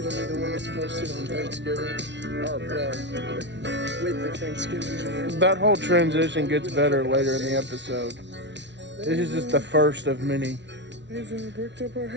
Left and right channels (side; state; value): left; late; 0.51 ms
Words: to be the one that's posted on Thanksgiving. Or, with the Thanksgiving video. That whole transition gets better later in the episode. This is just the first of many. They've bricked up our